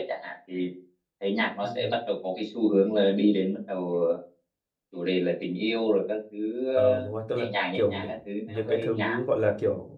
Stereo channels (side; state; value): both; identical; correlation 1.00